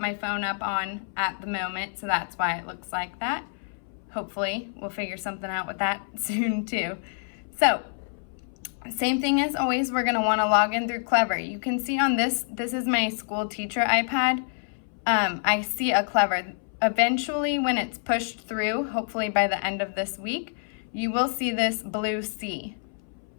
phone up on at the moment, so that's why it looks like that. Hopefully we'll figure something out with that soon too. So same thing as always, we're going to want to log in through Clever. You can see on this is my school teacher iPad. I see a Clever. Eventually when it's pushed through, hopefully by the end of this week, you will see this blue C.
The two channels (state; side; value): silent; right; 60 dB below the other